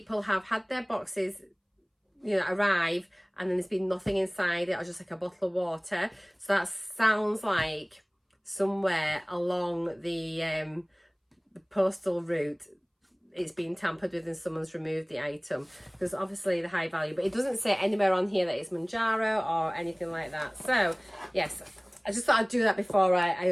have had their boxes, you know, arrive and then there's been nothing inside it, or just like a bottle of water. So that sounds like somewhere along the postal route it's been tampered with and someone's removed the item, because obviously the high value, but it doesn't say anywhere on here that it's Mounjaro or anything like that. So yes, I just thought I'd do that before I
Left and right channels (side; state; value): both; identical; correlation 1.00